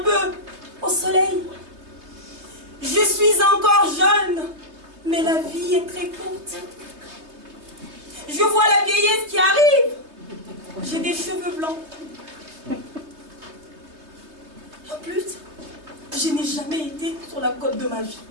peu au soleil. Je suis encore jeune, mais la vie est très courte. Je vois la vieillesse qui arrive. J'ai des cheveux blancs. En plus, je n'ai jamais été sur la côte de ma vie.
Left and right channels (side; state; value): left; late; 3.2 ms